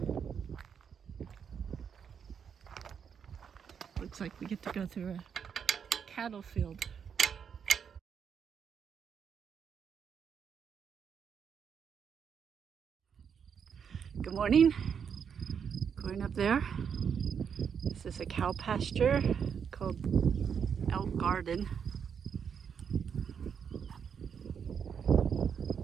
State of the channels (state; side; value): quieter; left; 7.2 dB